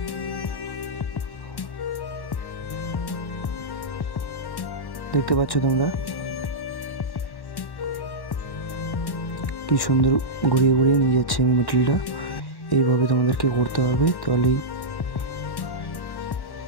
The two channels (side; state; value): right; late; 1.1 ms